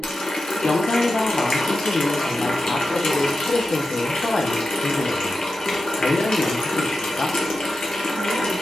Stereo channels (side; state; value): both; normal; correlation 0.91